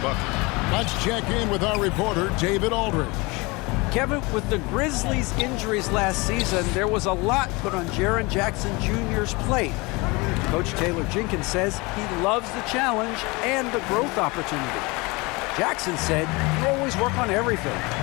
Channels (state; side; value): quieter; right; 25.4 dB